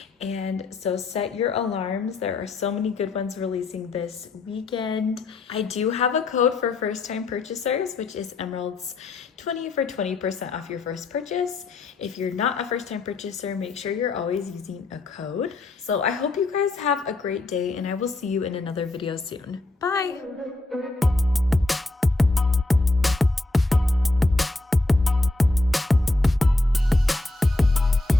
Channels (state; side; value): quieter; right; 3.0 dB